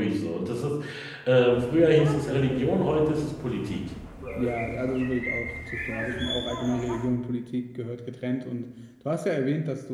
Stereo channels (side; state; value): both; identical; correlation 1.00